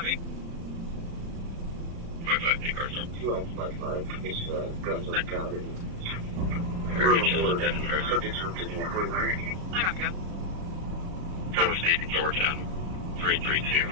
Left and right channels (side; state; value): left; late; 35 ms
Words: me. 55, take car stop. 2555. It's guns on county. Subjects are taking out 49. I got to go. Cover State, Georgia, 332.